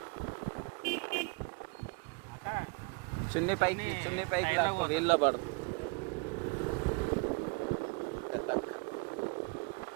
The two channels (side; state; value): left; quieter; 29.7 dB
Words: చున్నీ పైకి లేకపోతే వీళ్ళలో పడుతుంది.